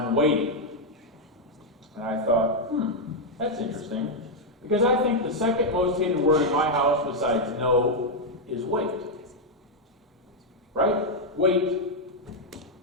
waiting. And I thought, that's interesting. Because I think the second most hated word in my house besides no is wait. Right? Wait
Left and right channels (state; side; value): normal; both; correlation 0.00